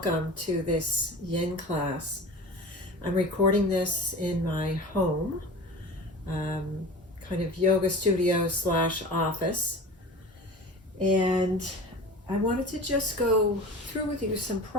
to this yin class. I'm recording this in my home, kind of yoga studio slash office, and I wanted to just go through with you some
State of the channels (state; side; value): normal; both; correlation 0.35